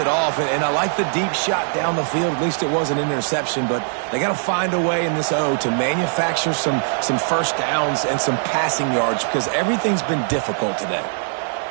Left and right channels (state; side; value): silent; left; 65 dB below the other